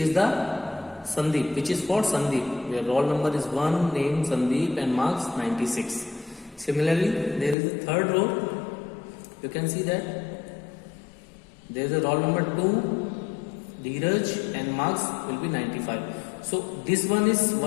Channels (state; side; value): drops out; right; at 7.6 s